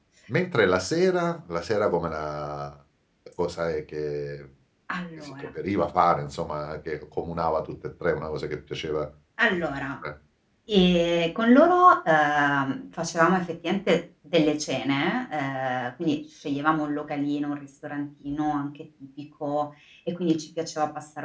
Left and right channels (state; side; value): identical; both; correlation 1.00